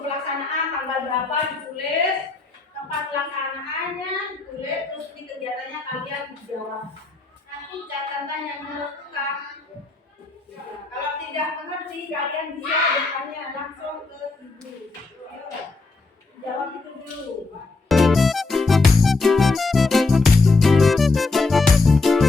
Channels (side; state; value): right; quieter; 3.7 dB